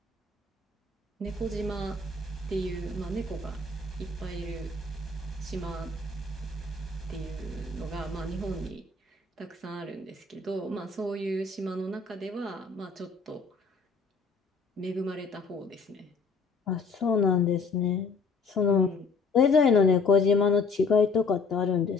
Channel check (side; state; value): right; quieter; 4.1 dB